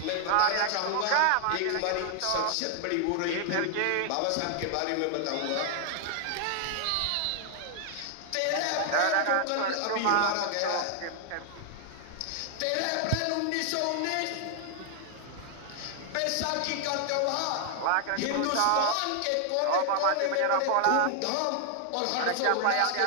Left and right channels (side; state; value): both; different; correlation 0.00